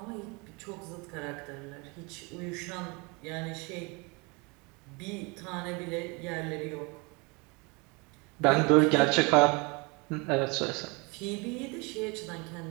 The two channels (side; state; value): left; quieter; 28.9 dB